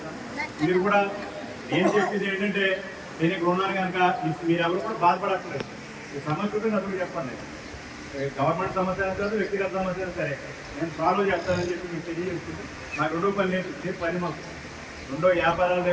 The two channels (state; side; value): identical; both; correlation 1.00